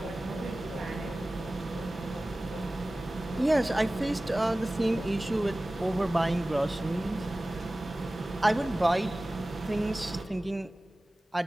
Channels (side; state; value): both; normal; correlation 0.97